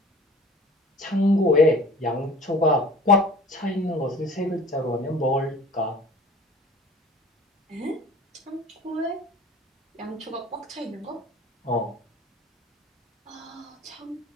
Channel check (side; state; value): both; normal; correlation 0.45